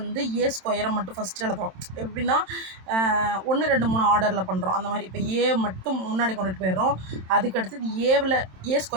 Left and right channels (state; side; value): late; left; 27 ms